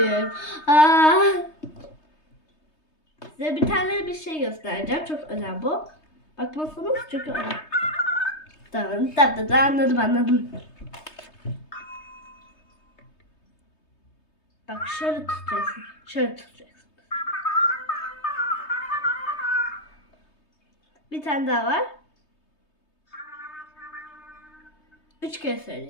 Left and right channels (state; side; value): late; right; 3.2 ms